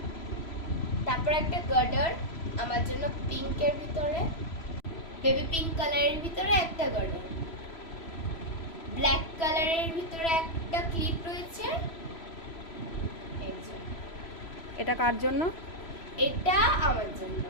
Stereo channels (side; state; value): right; late; 3.0 ms